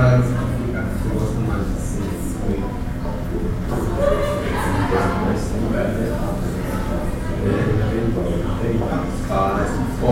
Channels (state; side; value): identical; both; correlation 1.00